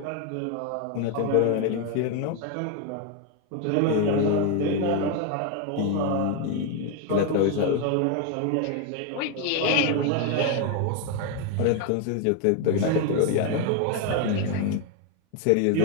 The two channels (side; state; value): both; different; correlation 0.01